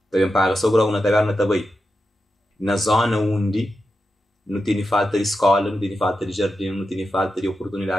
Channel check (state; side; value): normal; both; correlation 0.89